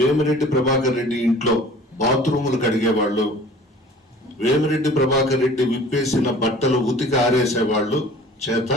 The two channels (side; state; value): both; normal; correlation 0.47